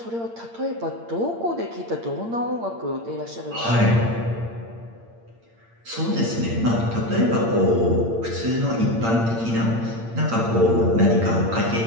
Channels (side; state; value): left; late; 8.7 ms